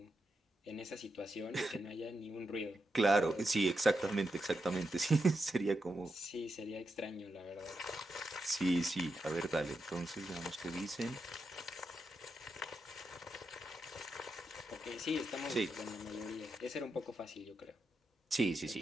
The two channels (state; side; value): normal; both; correlation 0.86